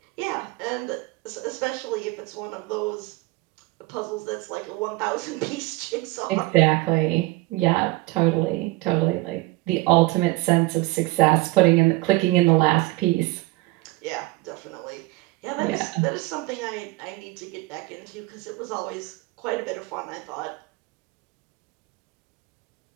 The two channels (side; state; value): left; quieter; 21.2 dB